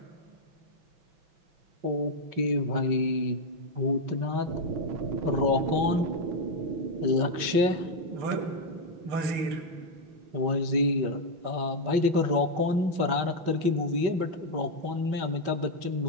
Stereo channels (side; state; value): left; late; 5.3 ms